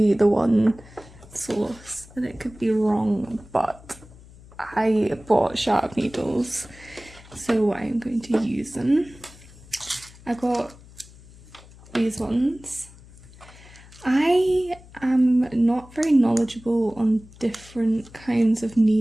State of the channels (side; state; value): left; noise; hum, 22 dB below the sound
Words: the one source and it could be wrong, but I bought sharp needles, so I'm going to use them. I got these ones. I am not very knowledgeable on different kinds of